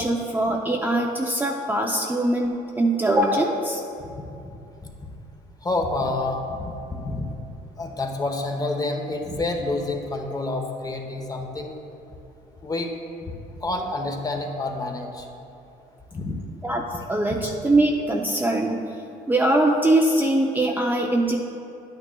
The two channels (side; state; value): both; normal; correlation 0.68